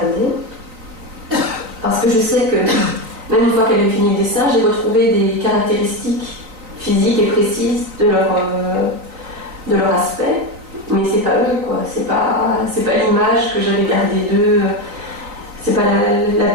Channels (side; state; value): left; late; 3.9 ms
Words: Parce que je sais que, même une fois qu'elle a fini le dessin, j'ai retrouvé des caractéristiques physiques et précises de leur aspect. Mais c'est pas eux, quoi. C'est pas l'image que j'avais gardée d'eux. C'est pas la